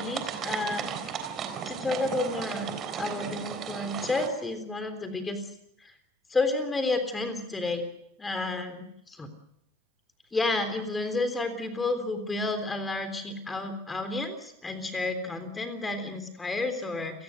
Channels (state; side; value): normal; both; correlation 0.59